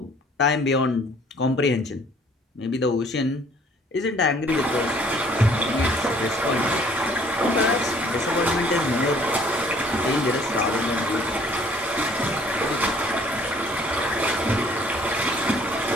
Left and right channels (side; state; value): both; normal; correlation 0.58